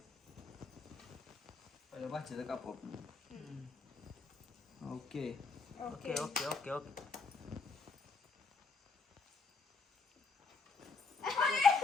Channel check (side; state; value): right; quieter; 4.3 dB